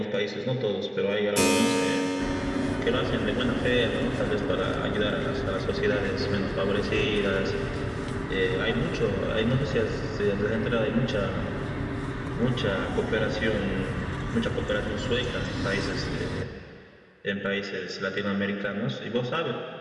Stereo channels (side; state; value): both; identical; correlation 1.00